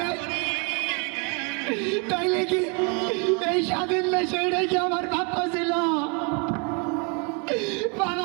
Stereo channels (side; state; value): left; quieter; 34.8 dB